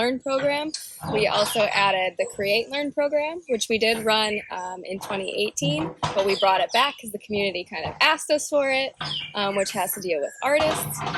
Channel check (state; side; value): identical; both; correlation 1.00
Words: program, we also added the Create Learn program, which we did run in 2018, but we brought it back because the community kind of asked us for it, which has to deal with artists.